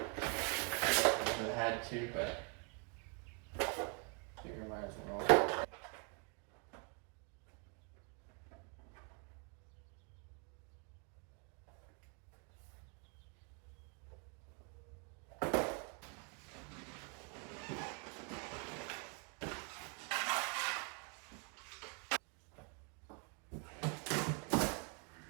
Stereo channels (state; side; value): quieter; left; 36.4 dB